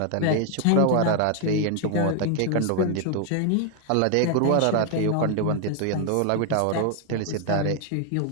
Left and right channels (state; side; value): different; both; correlation 0.00